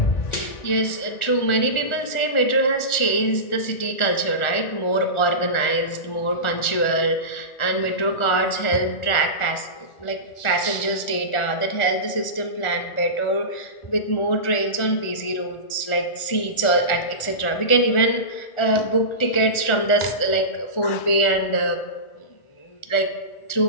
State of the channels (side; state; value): right; late; 1.4 ms